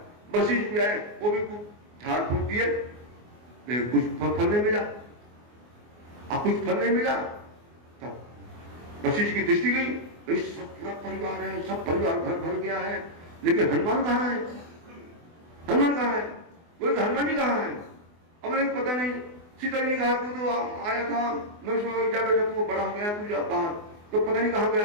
वशिष्ठ भी आए, वो भी झाड़ फूक दिए, कुछ फल नहीं मिला। अब कुछ फल नहीं मिला तब वशिष्ठ की दृष्टि गई, सब पूरा परिवार है, सब परिवार घर भर गया है, लेकिन हनुमान कहाँ है? हनुमान कहाँ है? बोले हनुमान जी कहाँ है? अब मुझे पता नहीं। सीता जी ने कहा तू तो आया था, मैं उसमें जा बेटा, तू बड़ा हो गया, तू जा बाहर, तो पता नहीं कहाँ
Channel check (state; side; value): late; left; 24 ms